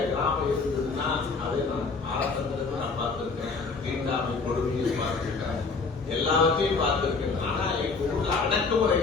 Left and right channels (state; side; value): quieter; right; 4.4 dB